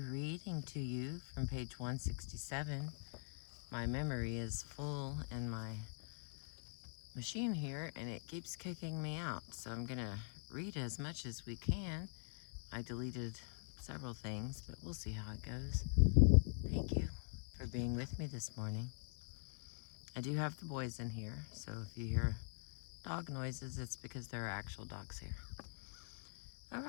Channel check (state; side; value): silent; right; digital silence